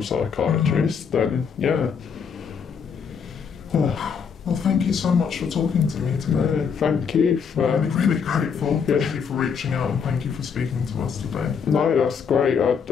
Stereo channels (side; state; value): right; quieter; 6.5 dB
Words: psychiatrist, then yeah. Well, thank you so much for talking to me today. Thank you for... I'm really grateful. Thank you for reaching out and thank you for speaking to us today. No, that's great. I